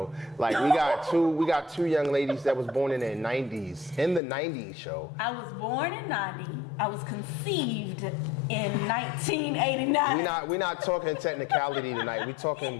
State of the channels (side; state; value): right; drops out; at 4.2 s